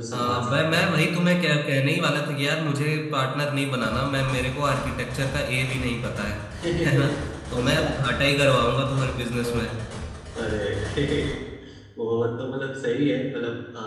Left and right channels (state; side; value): identical; both; correlation 1.00